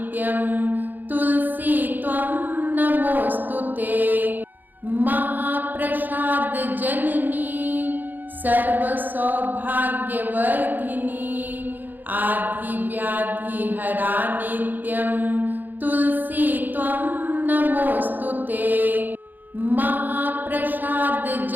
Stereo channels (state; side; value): late; left; 0.087 ms